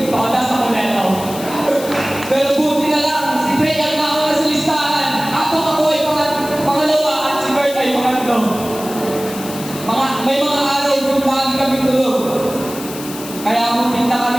pakadas ako neto. Pero buti na lang, si Dre ang nauna sa listahan. Ako ay pangalawa at si Bert ay pangatlo. May mga araw kung lagi kami tulog. Kaya pumunta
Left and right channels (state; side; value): noise; left; hiss, 12 dB below the sound